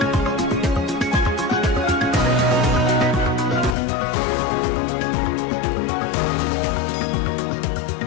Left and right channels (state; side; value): drops out; right; at 3.7 s